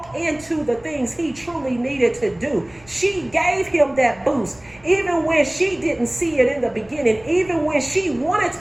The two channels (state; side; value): noise; right; rumble, 26 dB below the sound